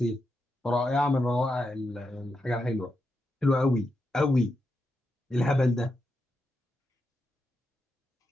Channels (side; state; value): both; normal; correlation 0.85